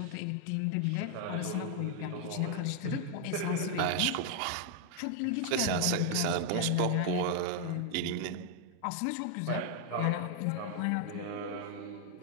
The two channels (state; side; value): different; both; correlation 0.00